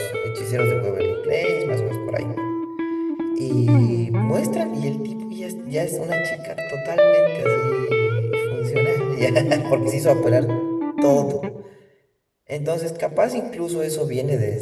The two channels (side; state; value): both; identical; correlation 1.00